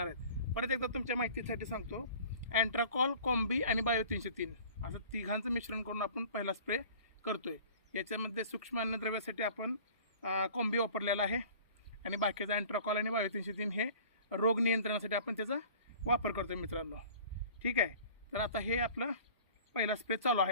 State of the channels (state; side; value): inverted; both; correlation -0.46